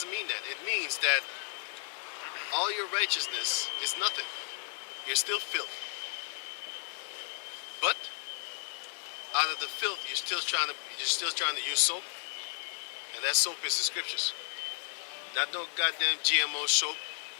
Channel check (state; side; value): silent; right; 55 dB below the other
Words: mean that. It means that all your righteousness is nothing. You're still filth. But out of the filth, you're still trying to use soap, and that soap is the scriptures. Not no goddamn GMO soap